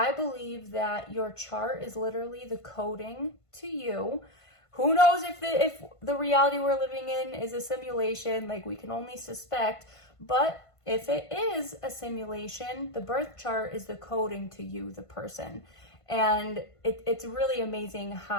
believe that your chart is literally the coding to you. Who knows if the reality we're living in is a simulation, like we can only suspect, but if it is a simulation, the birth chart is the coding to you, the person. And it's really amazing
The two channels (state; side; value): late; right; 1.5 ms